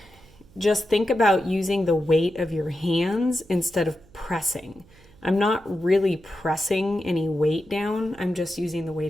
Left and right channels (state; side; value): noise; right; hum, 27 dB below the sound